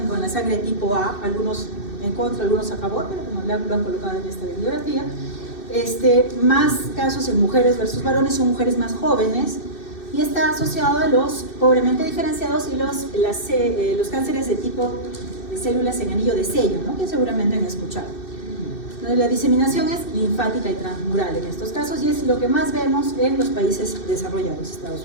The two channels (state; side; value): late; right; 2.6 ms